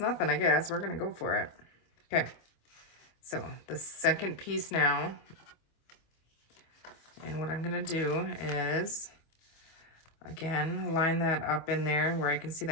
I guess. We're gonna go for it. Okay, so the second piece now, And what I'm gonna do is, again, line that up in there where I can see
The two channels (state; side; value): late; right; 25 ms